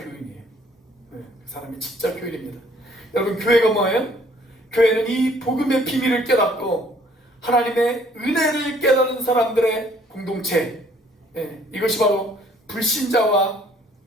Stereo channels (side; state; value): both; normal; correlation 0.60